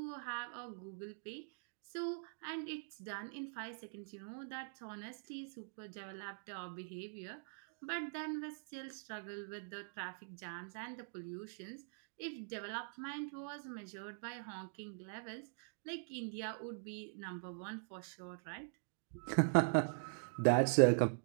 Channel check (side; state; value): left; silent; digital silence